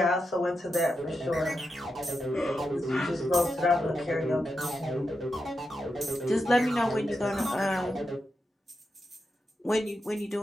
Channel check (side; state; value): both; normal; correlation 0.87